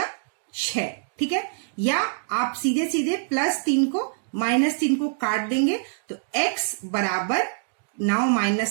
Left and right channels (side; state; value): left; silent; digital silence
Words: 6, ठीक है। या आप सीधे सीधे +3 को -3 को काट देंगे तो x बराबर 9